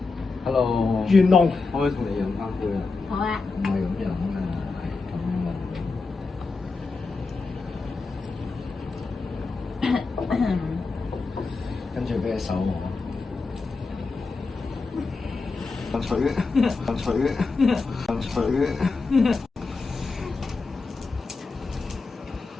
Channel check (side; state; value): right; quieter; 4.1 dB